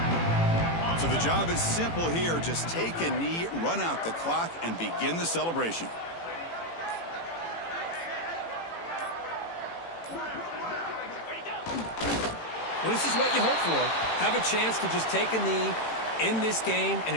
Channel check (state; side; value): late; right; 18 ms